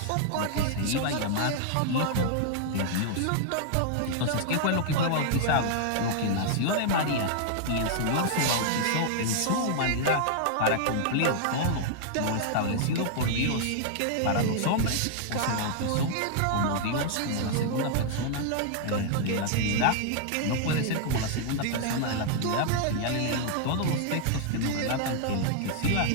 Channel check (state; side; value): different; both; correlation -0.01